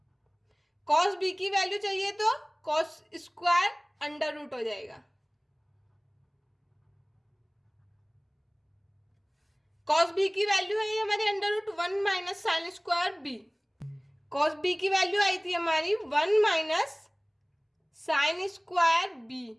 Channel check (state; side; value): identical; both; correlation 1.00